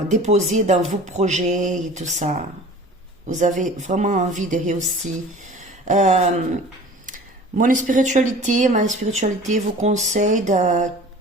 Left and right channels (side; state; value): both; normal; correlation 0.43